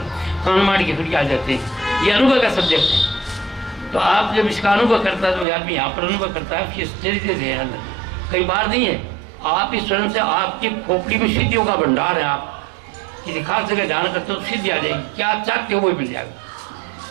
कान मार के फिर आ जाते हैं। ये अनुभव का सब्जेक्ट है। तो आप जब इसका अनुभव करता है तो आदमी यहाँ पर अनुभव करता है, उसकी स्थिति से कई बार नहीं है। आप इस स्वर्ण से आपकी खोपड़ी में सिद्धियों का भंडार है, आप किसी खास जगह ध्यान करते हो तो सिद्धि आ जाएगी, क्या चाहते हो वो मिल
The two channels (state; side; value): drops out; left; at 5.5 s